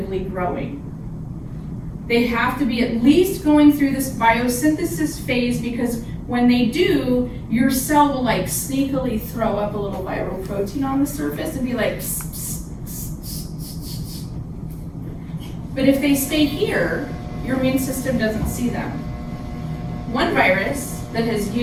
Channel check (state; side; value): identical; both; correlation 1.00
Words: growing. They have to be at least going through this biosynthesis phase, because when they do, your cell will like sneakily throw up a little viral protein on the surface and be like, pss, pss, pss, pss, pss. But if they stay here, your immune system doesn't see them. One virus that has